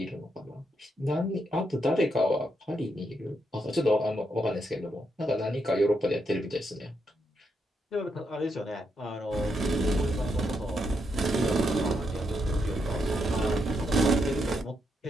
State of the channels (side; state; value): both; normal; correlation 0.80